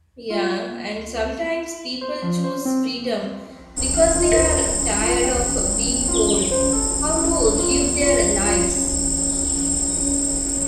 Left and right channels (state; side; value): identical; both; correlation 1.00